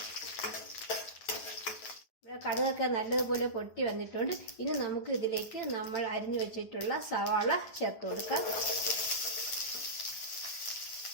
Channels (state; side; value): late; right; 9.3 ms